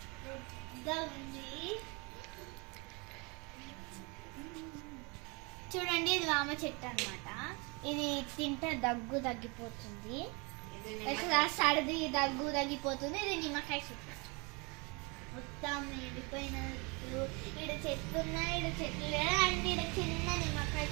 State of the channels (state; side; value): quieter; left; 29.6 dB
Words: ఉంది. చూడండి, ఇది వామ చెట్టు అనమాట. ఇది తింటే దగ్గు తగ్గిపోతుంది, సర్ది దగ్గు తగ్గిపోతుంది. ఇది నిమ్మకాయ చెట్టు. మొత్తం ఎండిపోయినట్టు ఇక్కడ చెట్లు ఉన్నాయి, ఇక్కడ చెట్లు లేదా అండ్ ఇక్కడ చిన్న నిమ్మకాయ